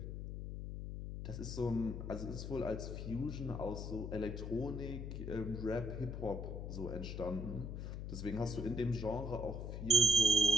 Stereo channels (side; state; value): left; noise; hum, 6 dB below the sound